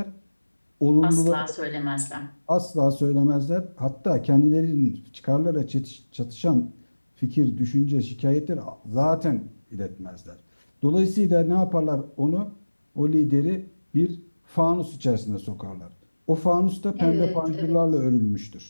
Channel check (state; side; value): inverted; both; correlation -1.00